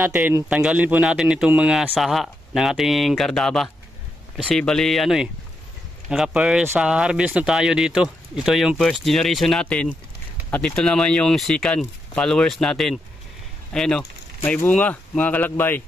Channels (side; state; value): both; normal; correlation 0.83